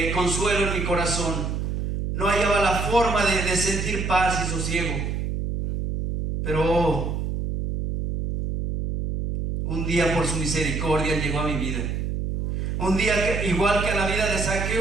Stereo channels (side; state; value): right; noise; hum, 2 dB below the sound